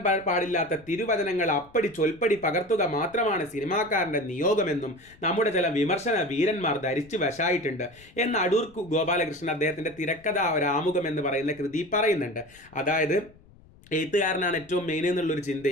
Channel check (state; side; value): noise; left; rumble, 25 dB below the sound